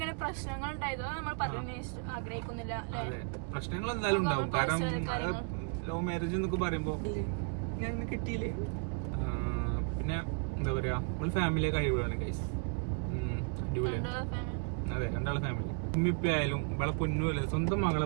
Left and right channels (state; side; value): quieter; left; 39.8 dB